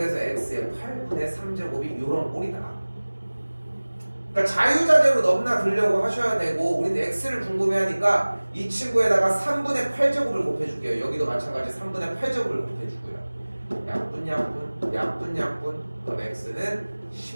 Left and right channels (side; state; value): both; inverted; correlation -1.00